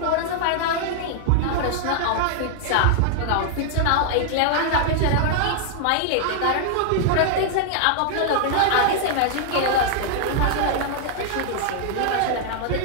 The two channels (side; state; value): both; different; correlation -0.01